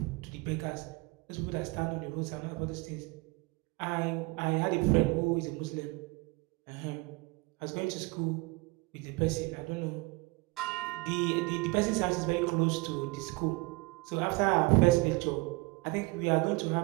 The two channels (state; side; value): quieter; left; 24.9 dB